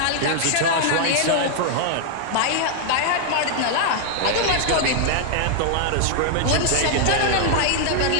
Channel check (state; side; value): different; both; correlation -0.01